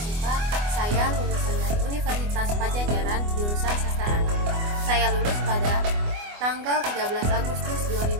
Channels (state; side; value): late; left; 24 ms